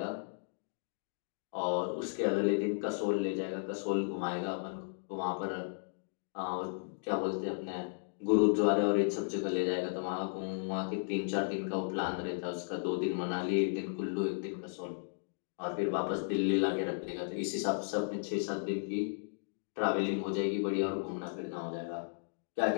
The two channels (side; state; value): right; silent; digital silence